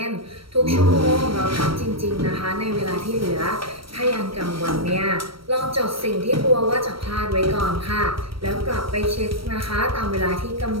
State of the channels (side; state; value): left; late; 0.75 ms